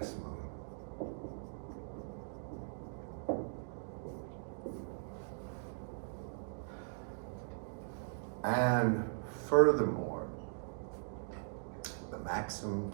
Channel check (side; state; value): left; silent; digital silence